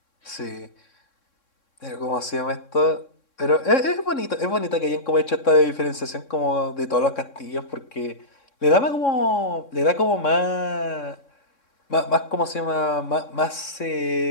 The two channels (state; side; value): late; right; 3.6 ms